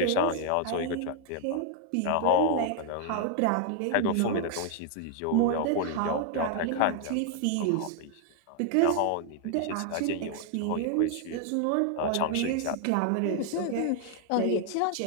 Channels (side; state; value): both; different; correlation 0.00